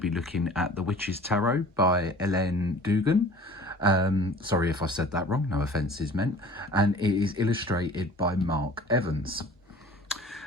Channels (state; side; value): normal; both; correlation 0.45